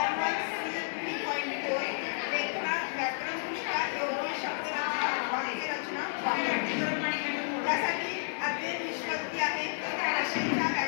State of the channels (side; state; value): right; silent; digital silence